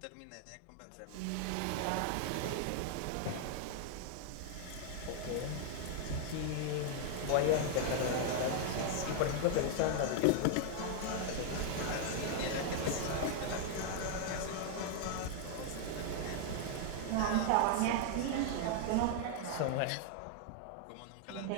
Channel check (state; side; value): different; both; correlation 0.00